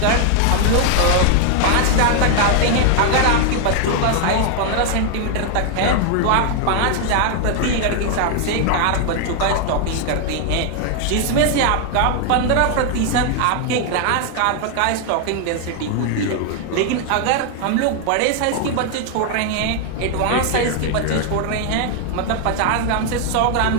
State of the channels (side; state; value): both; different; correlation 0.00